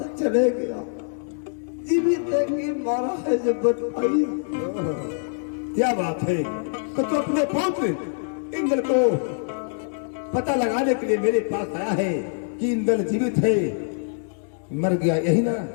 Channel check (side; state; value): right; silent; digital silence